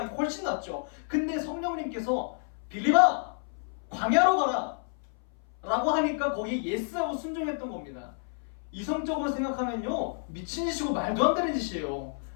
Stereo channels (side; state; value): right; silent; 57 dB below the other